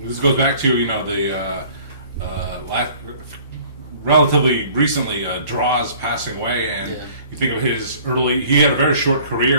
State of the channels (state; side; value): inverted; both; correlation -0.52